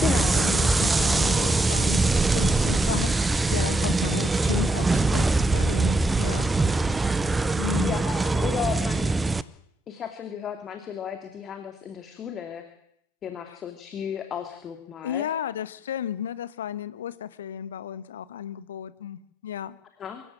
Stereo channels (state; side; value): normal; both; correlation 0.78